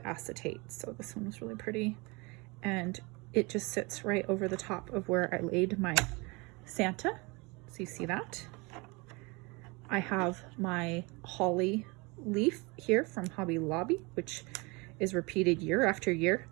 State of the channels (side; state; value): left; quieter; 27.0 dB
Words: acetate. So this one was really pretty. And it just sits right over the top of where I laid my Santa. So you see that. I have my holly leaf here from Hobby Lobby, which is repeated year after year.